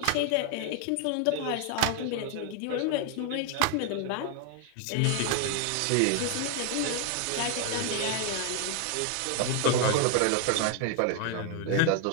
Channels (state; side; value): different; both; correlation 0.01